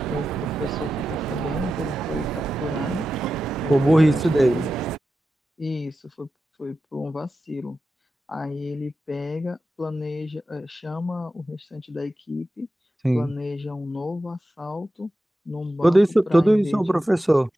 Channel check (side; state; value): both; normal; correlation 0.92